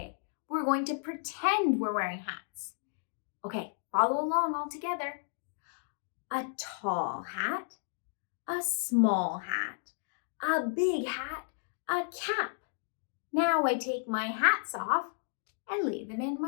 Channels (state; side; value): silent; right; digital silence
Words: We're going to pretend we're wearing hats. Okay, follow along all together. A tall hat, a small hat, a big hat, a cap. Now I take my hats off and lay them in